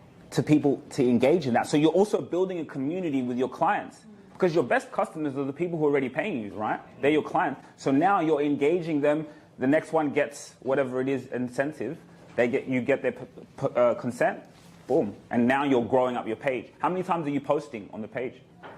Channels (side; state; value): both; identical; correlation 1.00